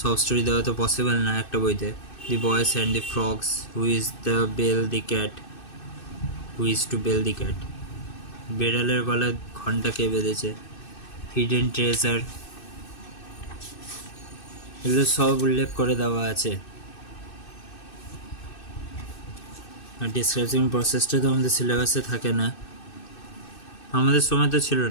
স্টোরি দেওয়া তো পসিবল না একটা বইতে। The boys and the frogs, who is the bell the cat, who is to bell the cat, বেড়ালের গলায় ঘন্টা কে বেঁধেছে, হিডেন ট্রেজার, এগুলো সব উল্লেখ করে দেওয়া আছে। আর ডিসক্রাইবিং প্রসেসটা তো আমাদের সিলেবাসে থাকে না, আমাদের সময় তো ছিল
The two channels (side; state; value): right; late; 2.6 ms